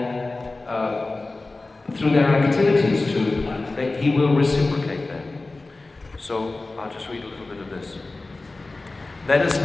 through their activities that he will reciprocate them. So I'll just read a little bit of this. Let us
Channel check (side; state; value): right; quieter; 3.3 dB